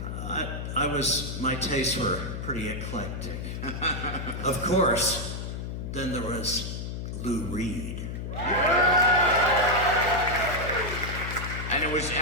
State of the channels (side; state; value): left; noise; hum, 5 dB below the sound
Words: My tastes were pretty eclectic. Of course, then there was Lou Reed. And it was